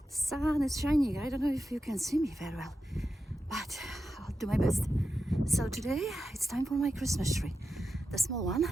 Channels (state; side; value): normal; both; correlation 0.90